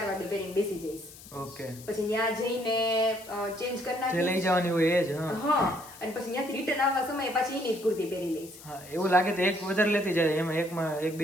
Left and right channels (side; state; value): left; noise; hiss, 18 dB below the sound